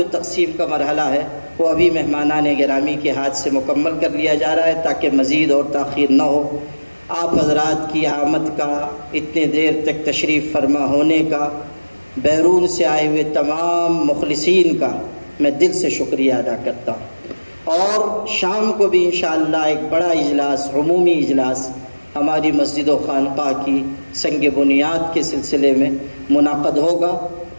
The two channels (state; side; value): inverted; both; correlation -1.00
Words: تقسیم کا مرحلہ ہے وہ ابھی مہمانان گرامی کے ہاتھ سے مکمل کر لیا جا رہا ہے تاکہ مزید اور تاخیر نہ ہو۔ آپ حضرات کی آمد کا، اتنے دیر تک تشریف فرما ہونے کا، بیرون سے آئے ہوئے تمام مخلصین کا میں دل سے شکریہ ادا کرتا ہوں، اور شام کو بھی انشاءاللہ ایک بڑا اجلاس، عمومی اجلاس ہماری مسجد و خانقاہ کی سنگ بنیاد کے سلسلے میں منعقد ہوگا